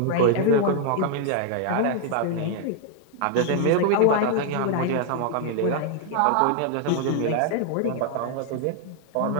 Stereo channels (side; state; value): both; different; correlation 0.00